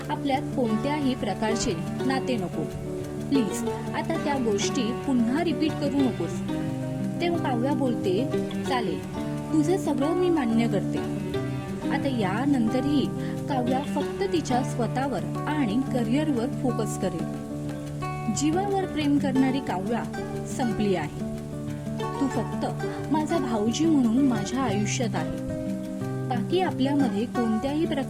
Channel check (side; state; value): both; identical; correlation 1.00